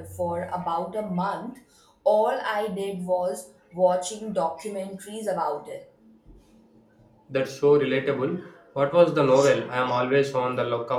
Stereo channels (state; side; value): identical; both; correlation 1.00